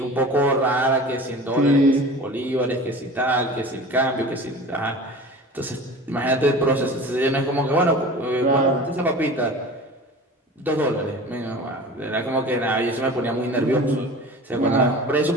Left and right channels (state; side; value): normal; both; correlation 0.38